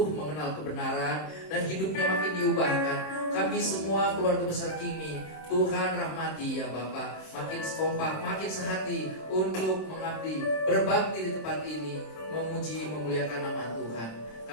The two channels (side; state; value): right; late; 26 ms